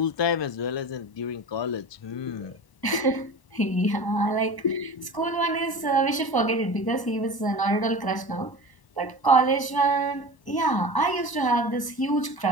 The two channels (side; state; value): right; late; 1.0 ms